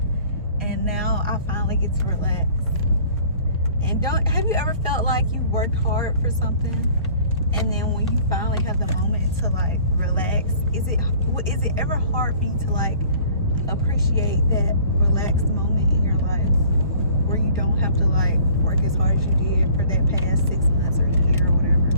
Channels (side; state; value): both; inverted; correlation -0.52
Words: And now I finally get to relax. And have you ever felt like you worked hard for something, and then when you finally have the moment to like relax, is it ever hard for you to like appreciate that relaxed moment in your life where you don't have to like work as hard as you did for that past 6 months or a year or whatever?